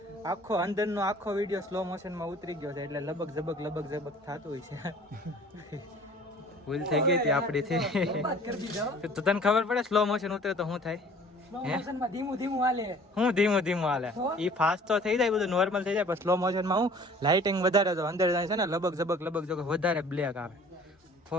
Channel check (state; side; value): normal; both; correlation 0.50